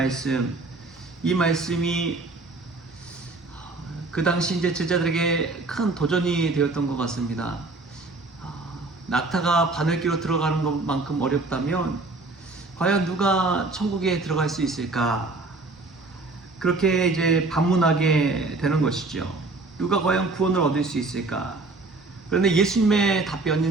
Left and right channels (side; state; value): left; quieter; 3.3 dB